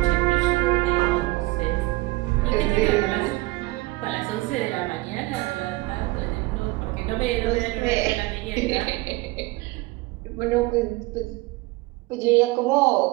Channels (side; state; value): left; quieter; 21.5 dB